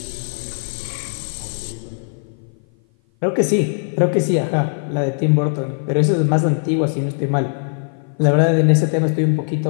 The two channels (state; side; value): silent; right; 56 dB below the other